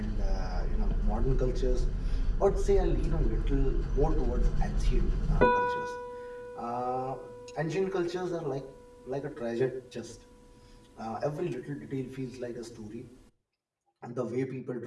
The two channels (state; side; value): identical; both; correlation 1.00